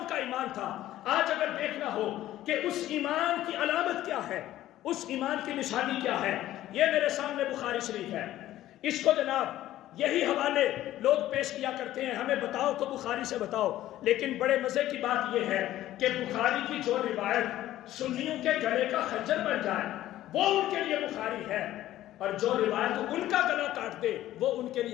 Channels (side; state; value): right; quieter; 14.0 dB